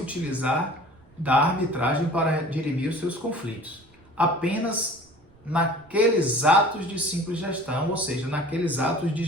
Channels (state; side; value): noise; right; rumble, 30 dB below the sound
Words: da arbitragem para dirimir os seus conflitos. Apenas naqueles atos de simples gestão, ou seja, naqueles atos de